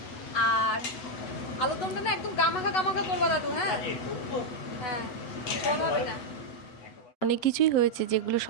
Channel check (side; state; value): right; late; 8.0 ms